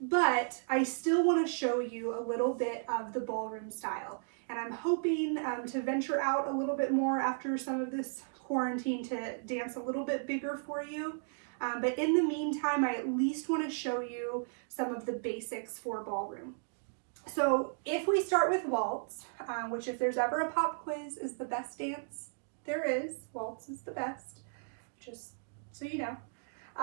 But I still want to show you a little bit of the ballroom style, and I'm hoping to venture out a little bit more after some of this quarantine to dance a little bit bigger for you. But in the meantime, I at least want to show you some of the basics for ballroom. So if we start with waltz, which if there's ever a pop quiz is the best dance there is, waltz is the best, just so you know.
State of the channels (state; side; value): silent; left; digital silence